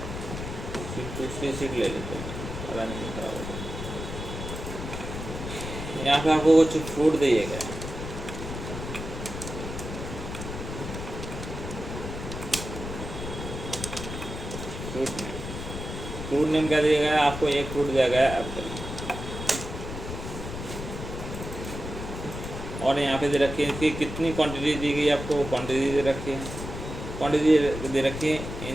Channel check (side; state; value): left; noise; rumble, 7 dB below the sound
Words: दूसरी सीट ले लेते हैं, पता नहीं खराब होता। यहाँ पे आपको कुछ फ्रूट दिएगा, फ्रूट नेम क्या दिया गया है आपको, एक फ्रूट दिया गया है एप्पल। और यहाँ पे दे रखी है इसकी कितनी क्वांटिटी दी गई आपको, क्वांटिटी दे रखी है, क्वांटिटी दे रखी है